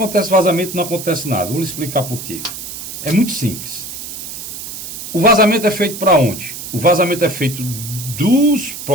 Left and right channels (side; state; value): right; noise; hiss, 9 dB below the sound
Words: vazamento e não acontece nada? Vou lhe explicar por quê. É muito simples. O vazamento é feito para onde? O vazamento é feito dos